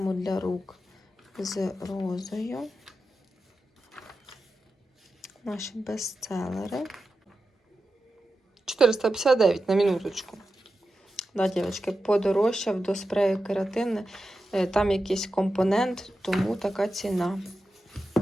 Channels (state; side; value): normal; both; correlation 0.91